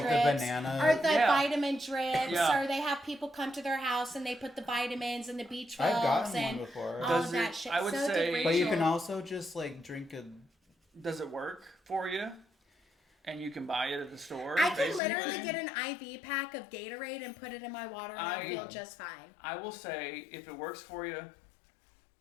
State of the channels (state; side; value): drops out; right; at 15.0 s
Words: the drips, banana- or the Yeah. vitamin drips, Yeah. or they have people come to their house and they put the vitamins and the B12s I've gotten and one before. all Does of that it- shit. I would so say- did But you Rachel. can also just like drink a. Does it work for you? And you can buy it at the store. I can basically? literally get an IV pack of Gatorade and put it in my water and I feel just fine. I will say, if it works for you,